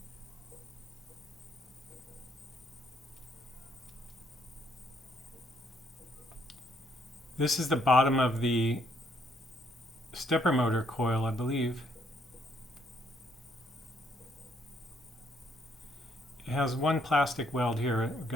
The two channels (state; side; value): normal; both; correlation 0.69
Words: This is the bottom of the stepper motor coil, I believe. It has one plastic weld here we're